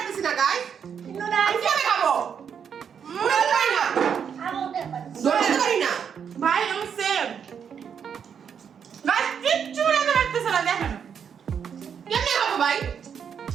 না গাইস। আমি কিভাবে খাবো? উড়াতে পারি না, ধরতে পারি না। ভাই আমি সেম। গাইস কিচ্ছু রান্না করতেছ না, দেখেন কেমনে খাবো ভাই?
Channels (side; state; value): left; quieter; 7.5 dB